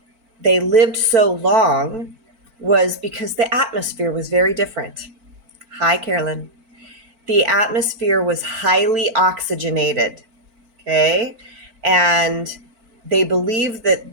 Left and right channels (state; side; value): late; left; 4.5 ms